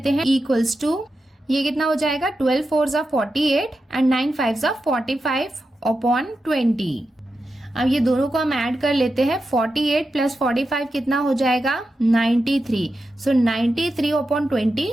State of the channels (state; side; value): normal; both; correlation 0.89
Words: हैं, इक्वल्स टू, ये कितना हो जाएगा 12 4 48 एंड 9 5 45/20। अब ये दोनों को हम ऐड कर लेते हैं, 48 प्लस 45 कितना हो जाएगा 93, सो 93/20